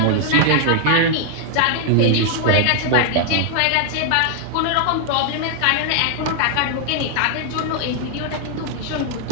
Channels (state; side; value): different; both; correlation 0.00